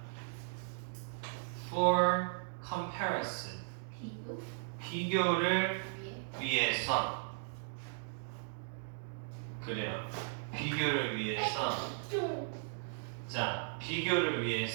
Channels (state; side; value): silent; left; digital silence